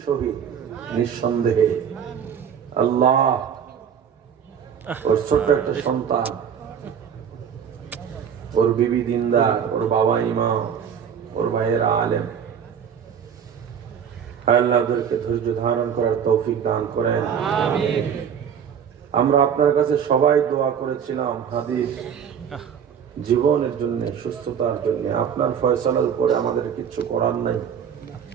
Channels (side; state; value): left; quieter; 7.9 dB